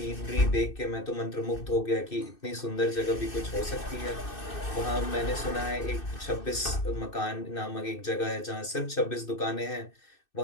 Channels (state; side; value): late; right; 2.6 ms